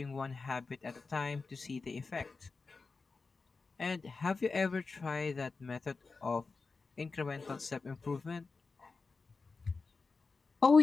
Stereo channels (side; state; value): right; quieter; 4.2 dB